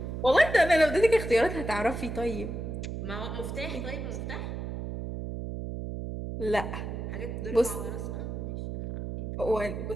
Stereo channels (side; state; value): right; noise; hum, 5 dB below the sound